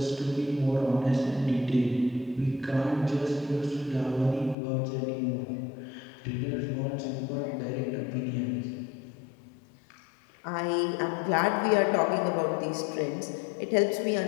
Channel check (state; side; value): drops out; right; at 4.5 s